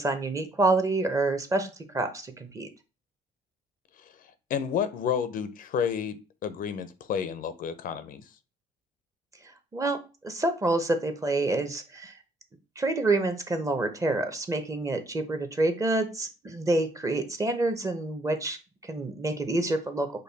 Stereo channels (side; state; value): both; normal; correlation 0.63